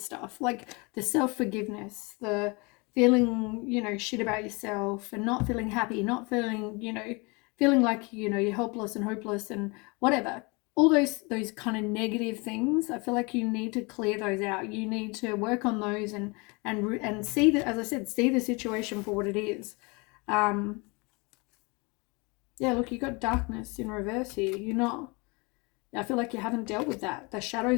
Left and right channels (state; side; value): quieter; right; 28.5 dB